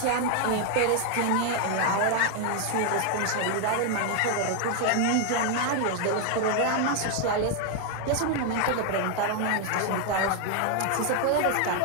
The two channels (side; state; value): both; different; correlation 0.00